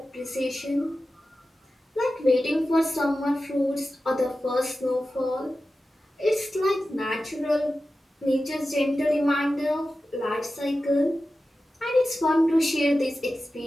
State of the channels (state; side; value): normal; both; correlation 0.94